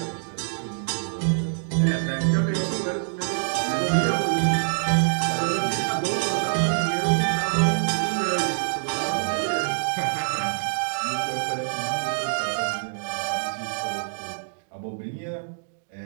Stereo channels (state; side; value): silent; left; digital silence